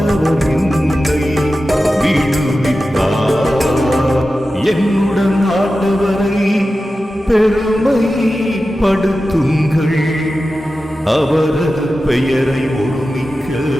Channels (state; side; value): normal; both; correlation 0.93